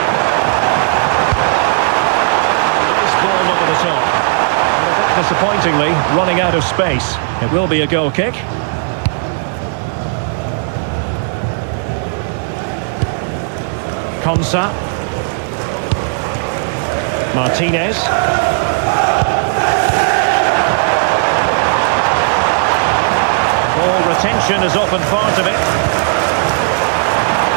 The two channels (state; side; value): silent; left; digital silence